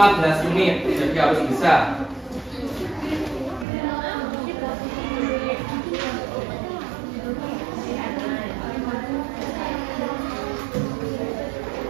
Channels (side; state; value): left; drops out; at 3.7 s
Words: menit, jadi harus bisa.